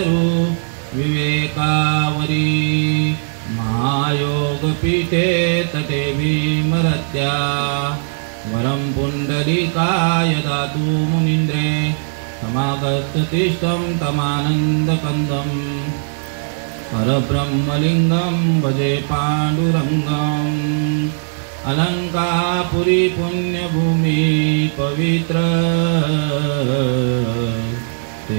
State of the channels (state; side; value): silent; left; digital silence